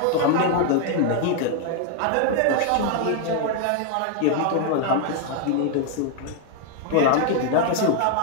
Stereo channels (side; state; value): both; different; correlation 0.00